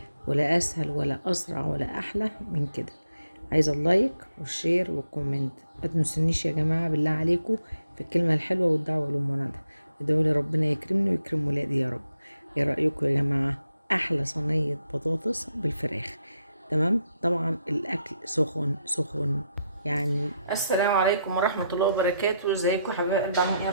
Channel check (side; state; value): both; inverted; correlation -0.81